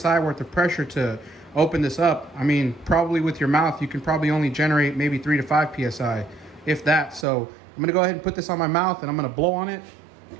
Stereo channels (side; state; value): left; drops out; at 7.2 s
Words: worth of pressure to open this up. I mean, probably with your mouth, you can probably only generate maybe 3 to 5 psi, if that. So I'm going to go ahead and put this on my mouth, and I'm going to blow on it,